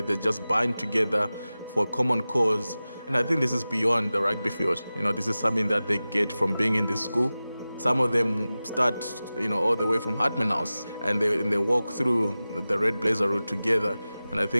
They just bind together for a common cause. And I think this is beyond the rugby field. You know, this is something that they get from being in this school. Some of them start, you know, all the way from Hartman House, and they walk through the Red Blazer route together. And I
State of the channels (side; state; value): both; inverted; correlation -0.96